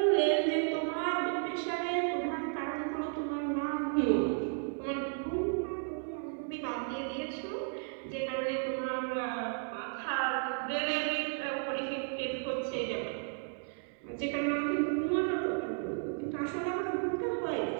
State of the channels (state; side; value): silent; left; 55 dB below the other